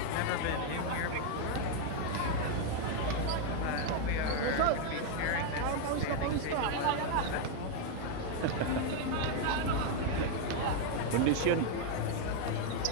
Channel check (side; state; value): both; different; correlation 0.01